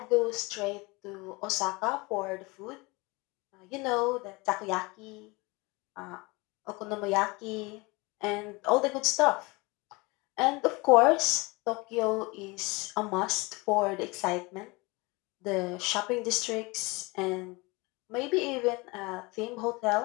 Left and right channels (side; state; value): right; quieter; 25.3 dB